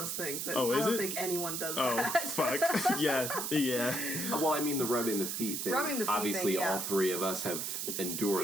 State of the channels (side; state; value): right; noise; hiss, 3 dB below the sound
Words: things. That Oh, is I don't it? think anyone does Oh, that. fuck. Yeah. well, I mean the rubbing the feet thing. Rubbing the feet Obviously, thing, yeah. all three of us have